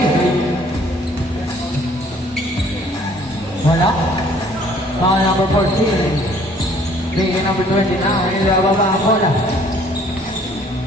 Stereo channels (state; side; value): normal; both; correlation 0.58